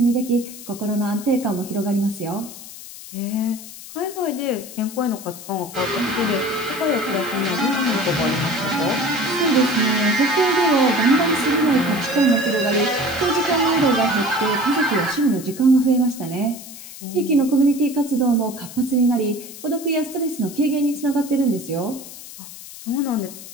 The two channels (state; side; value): noise; left; hiss, 14 dB below the sound